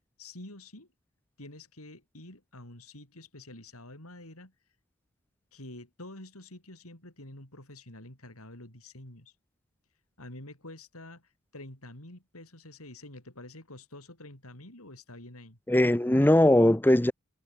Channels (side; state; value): both; normal; correlation 0.92